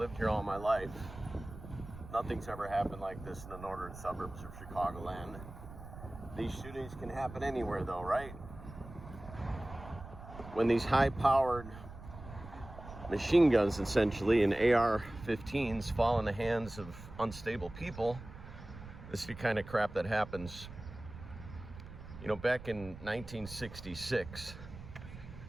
here all my life. Nothing's ever happened like this in the northern suburbs of Chicagoland. These shootings can happen anywhere though, right? When these high-powered machine guns, essentially, and AR-15s fall in the hands of unstable people, this is the kind of crap that happens. You know, back in 1966,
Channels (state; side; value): noise; right; rumble, 14 dB below the sound